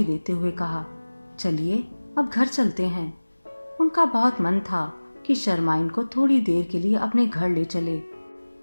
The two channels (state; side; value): inverted; both; correlation -1.00